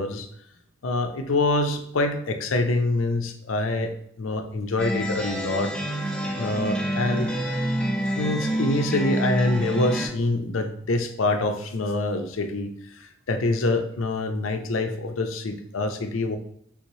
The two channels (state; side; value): normal; both; correlation 0.43